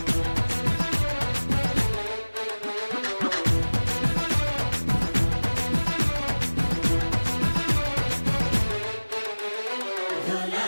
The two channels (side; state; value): both; inverted; correlation -1.00